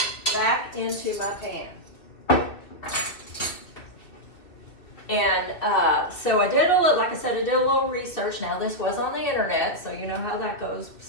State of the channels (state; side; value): late; right; 2.8 ms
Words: back into my pan. And so I did like I said, I did a little research. Now this was on the internet, so you know how that goes.